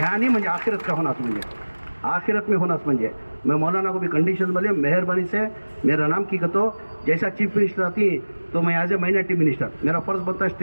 नहीं म्हणजे आखिरत का होना म्हणजे आखिरत में होना म्हणजे मैं मौलाना को भी कंडीशन बोले मेहरबानी से मेरा नाम की कहतो, जैसा चीफ मिनिस्टर आती तो मैं एज ए माइनॉरिटी मिनिस्टर मेरा फर्ज बनता है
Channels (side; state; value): both; inverted; correlation -1.00